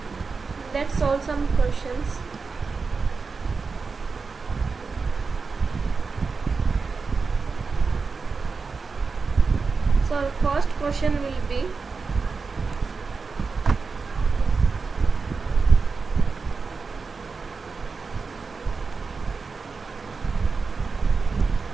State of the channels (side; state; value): left; quieter; 4.7 dB